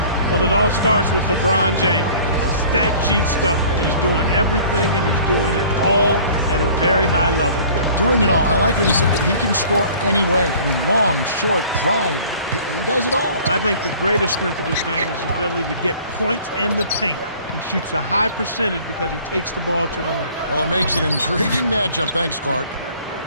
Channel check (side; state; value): both; inverted; correlation -0.49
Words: Well, it all starts with LeBron James, a stat sheet stuffer. He's doing everything, and he's doing it all at a very high level, Kevin. Doing it all. I like what you said. He can score any way. I mean, long, short, drive. He does it all. I think the greatest strength of his game is his ability to get points in the paint. He shoots a high percentage because he takes the ball to the rim. Well, it makes an intriguing matchup. Thanks, Clark.